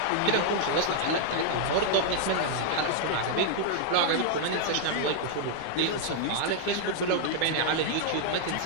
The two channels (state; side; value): different; both; correlation -0.01